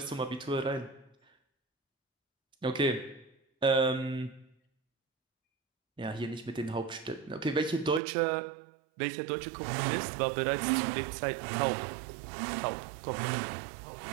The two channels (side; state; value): left; drops out; at 8.0 s